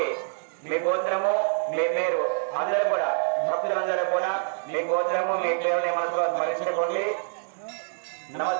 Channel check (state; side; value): silent; left; digital silence